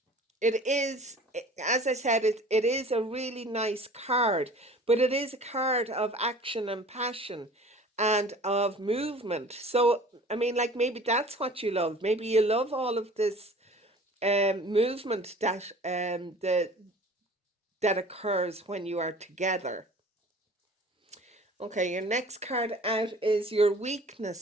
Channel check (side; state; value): both; normal; correlation 0.45